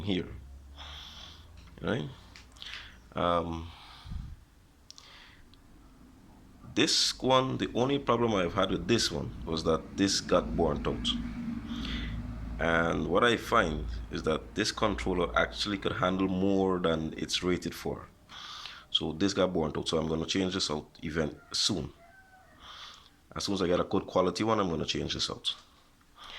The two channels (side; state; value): both; identical; correlation 1.00